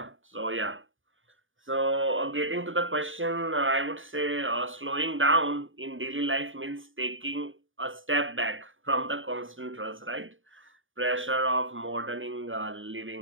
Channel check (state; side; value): late; left; 0.57 ms